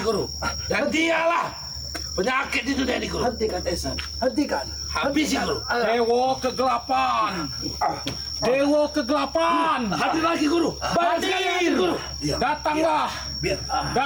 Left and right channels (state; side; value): identical; both; correlation 1.00